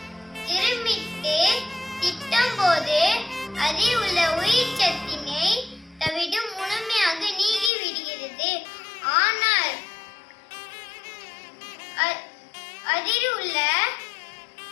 இருமிட்டு திட்டும் போது அதில் உள்ள உயிர் சத்தினை தவிடு முழுமையாக நீங்கிவிடுகிறது. ஆனால் அதில் உள்ள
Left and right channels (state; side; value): drops out; right; at 7.7 s